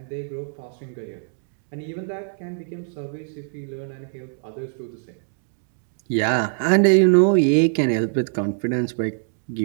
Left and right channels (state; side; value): silent; left; digital silence